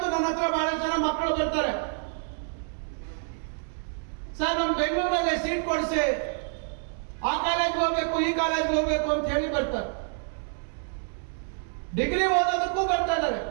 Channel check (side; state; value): left; silent; 60 dB below the other